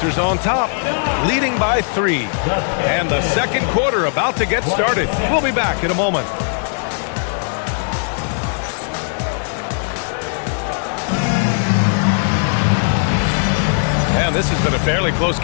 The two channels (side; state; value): right; silent; 59 dB below the other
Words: on top, leading by 3. And the second quarter about to get started. We'll be back in a moment. And this has been a fairly close